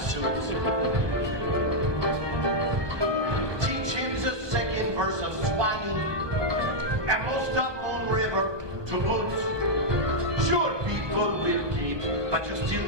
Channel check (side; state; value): left; late; 1.2 ms